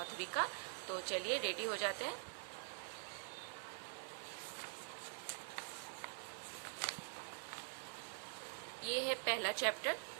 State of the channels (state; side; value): silent; left; digital silence